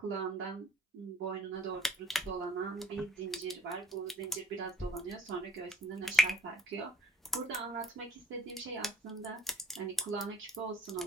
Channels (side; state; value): both; normal; correlation 0.56